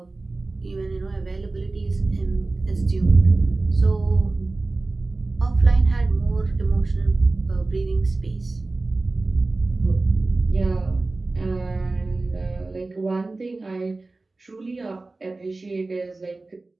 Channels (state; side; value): quieter; left; 3.3 dB